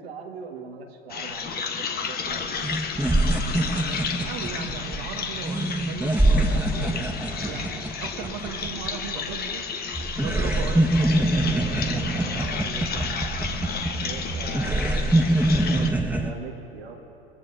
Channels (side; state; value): both; normal; correlation 0.69